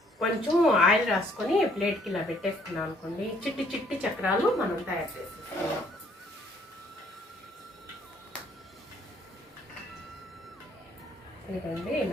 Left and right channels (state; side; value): normal; both; correlation 0.63